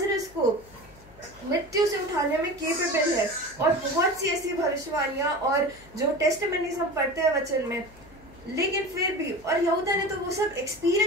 को मृत्यु से उठाने में केपेबल है। और बहुत सी ऐसी भविष्यवाणियां और जो टेस्टिमनीज हम पढ़ते हैं वचन में, लेकिन फिर भी, और यहूदा ने तो वो सब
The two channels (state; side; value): noise; left; hum, 23 dB below the sound